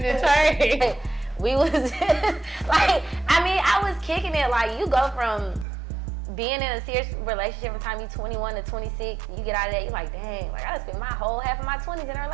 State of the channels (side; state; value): left; drops out; at 5.7 s